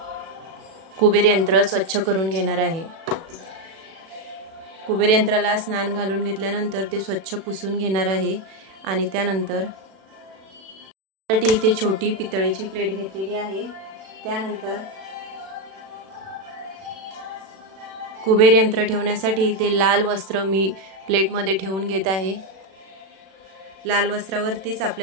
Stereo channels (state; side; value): late; left; 36 ms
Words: कुबेर यंत्र स्वच्छ करून घेणार आहे. कुबेर यंत्राला स्नान घालून घेतल्यानंतर ते स्वच्छ पुसून घेणार आहे आणि त्यानंतर इथे छोटी पितळेची प्लेट घेतलेली आहे. त्यानंतर कुबेर यंत्र ठेवण्यासाठी ते लाल वस्त्र मी प्लेटमध्ये ठेवून घेत आहे. लाल वस्त्रावरतीच